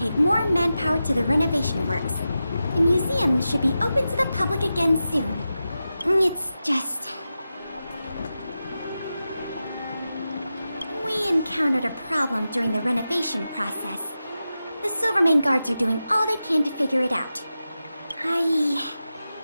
more manpower to the renovation works. The museum should be open to the public again soon. It's just... we encountered a problem during the renovation process. The Silvermane guards are doing all they can to figure it out.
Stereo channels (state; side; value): inverted; both; correlation -0.92